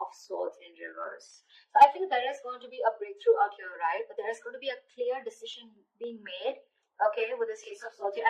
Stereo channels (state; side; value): identical; both; correlation 1.00